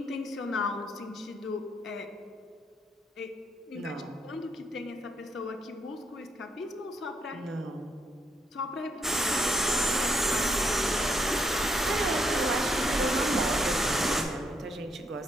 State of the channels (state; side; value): normal; both; correlation 0.74